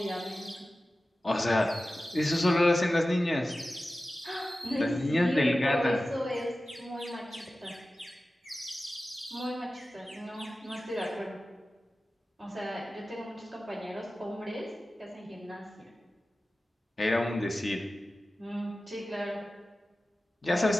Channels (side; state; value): both; normal; correlation 0.95